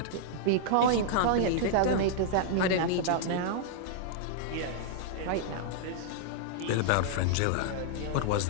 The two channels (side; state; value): both; different; correlation -0.01